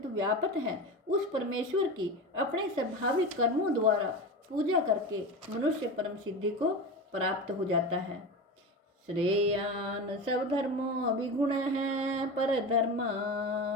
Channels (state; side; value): normal; both; correlation 0.25